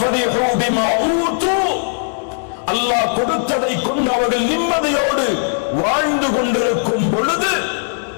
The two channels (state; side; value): silent; right; 68 dB below the other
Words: பிமா ஊது, அல்லாஹ் கொடுத்ததை கொண்டு அவர்கள் நிம்மதியோடு வாழ்ந்து கொண்டிருக்கும் பொழுது